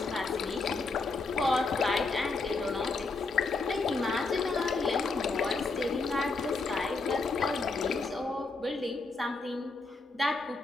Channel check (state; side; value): quieter; right; 3.7 dB